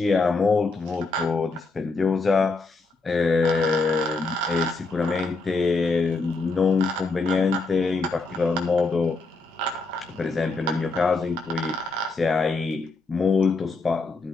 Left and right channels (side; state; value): right; quieter; 3.6 dB